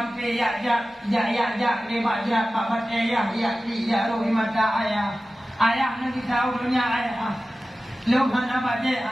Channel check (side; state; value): both; normal; correlation 0.95